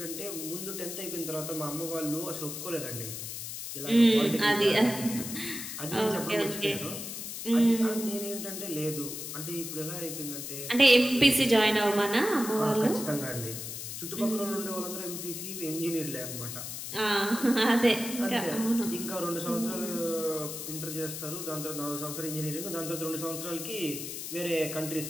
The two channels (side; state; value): left; noise; hiss, 7 dB below the sound